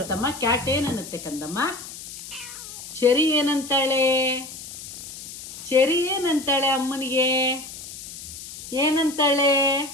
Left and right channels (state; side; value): noise; left; hiss, 13 dB below the sound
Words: ಕ್ಯಾಟ್ ಏನನ್ನುತ್ತೆ ಕಂದಮ್ಮ? ಚೆರಿ ಏನಂತಾಳೆ? ಚೆರಿ ಏನಂತಾಳೆ ಅಮ್ಮನಿಗೆ? ಏನಂತಾಳೆ?